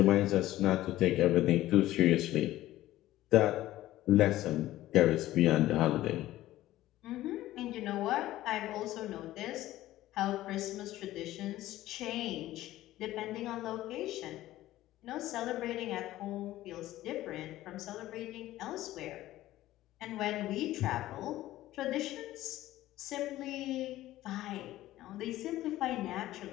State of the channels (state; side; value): quieter; right; 15.3 dB